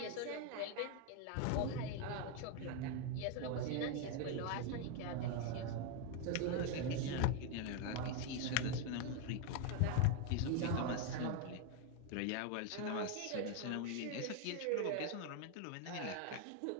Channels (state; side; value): different; both; correlation 0.01